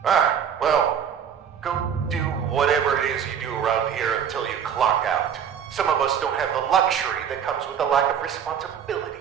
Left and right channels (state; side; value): quieter; left; 8.1 dB